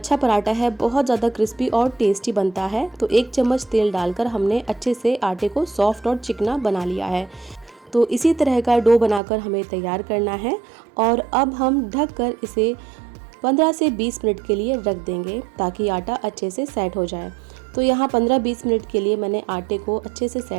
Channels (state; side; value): drops out; left; at 9.2 s